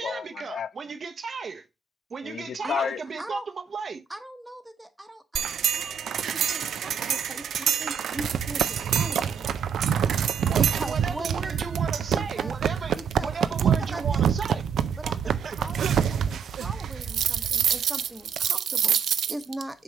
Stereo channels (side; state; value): left; quieter; 6.7 dB